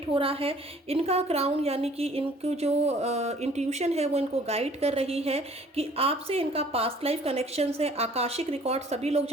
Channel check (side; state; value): both; normal; correlation 0.55